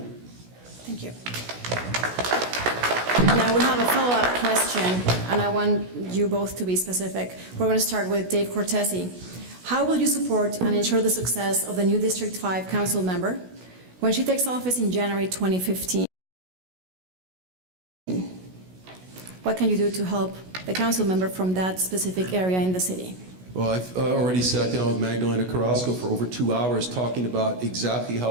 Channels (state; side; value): late; left; 16 ms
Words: Thank you. Now we have a follow-up question, and I want you both to be specific. We're going to start with Dave Cortese. How will you support and ensure the success of the new District 5 council member when she takes office in January 2015? What can you do to help the council member from that specific area in the city? Well, I've already sat down with Magdalena Carrasco for over 2 hours talking about exactly